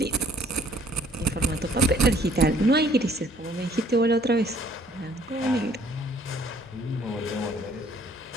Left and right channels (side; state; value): both; normal; correlation 0.60